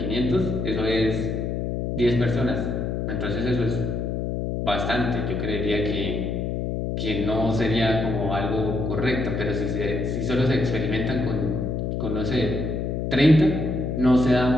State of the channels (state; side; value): noise; left; hum, 1 dB below the sound